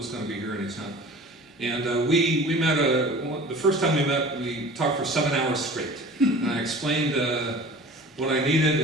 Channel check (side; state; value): both; normal; correlation 0.42